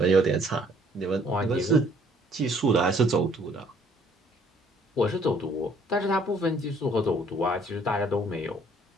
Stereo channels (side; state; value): both; normal; correlation 0.61